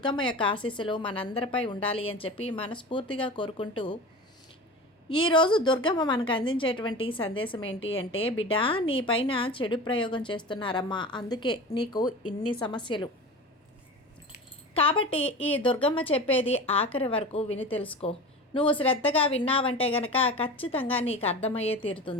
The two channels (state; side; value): normal; both; correlation 0.32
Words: యొక్క ఆశీస్సులు మనందరిపై ఉండాలి అని చెప్పి మనస్ఫూర్తిగా కోరుకుంటూ ఈరోజు దుర్గమ్మ మనకు అందించేటువంటి సందేశం ఏంటి అంటే, బిడ్డ నీ పైన చెడు ప్రయోగం చేస్తున్నారమ్మా, అందుకే నీకు ఇన్ని సమస్యలు. కాబట్టి ఈ దుర్గమ్మ చెప్పేది ఆఖరి వరకు విని తెలుసుకో. నువ్వు శ్రద్ధగా విన్నావంటే గనక ఖచ్చితంగా నీకు అర్థమయ్యే